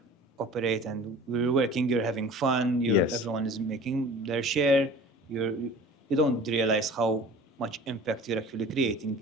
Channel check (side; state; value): both; normal; correlation 0.42